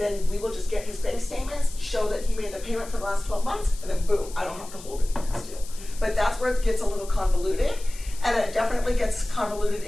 we will just get his bank statements, show that he made the payment for the last 12 months, and then boom, I don't have to hold it against you. But that's where it gets a little convoluted, and it definitely gets convoluted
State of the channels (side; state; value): left; noise; hiss, 17 dB below the sound